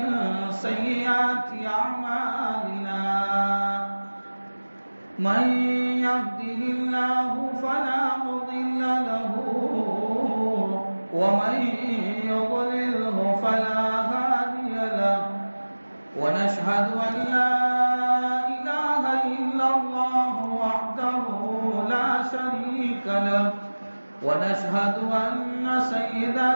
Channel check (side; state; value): both; inverted; correlation -1.00